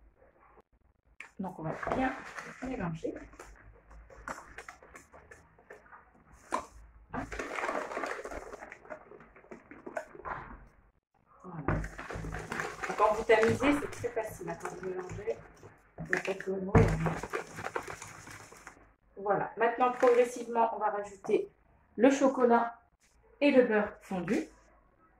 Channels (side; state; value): both; identical; correlation 1.00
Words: Donc on va bien mélanger. Voilà. Donc, quand vous tamisez, c'est très facile. Quand vous mélangez, il n'y a pas de mots. Voilà. Maintenant, progressivement, on va rajouter le chocolat et le beurre fondu.